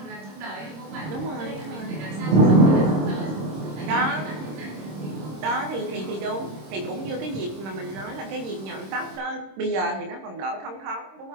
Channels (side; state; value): left; late; 26 ms